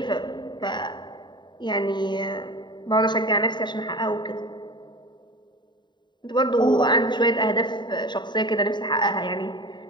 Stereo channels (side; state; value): right; late; 0.22 ms